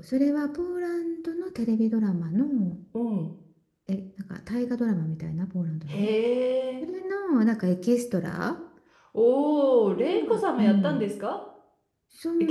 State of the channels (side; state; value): both; identical; correlation 1.00